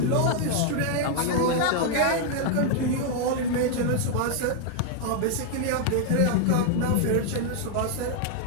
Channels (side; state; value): both; different; correlation 0.00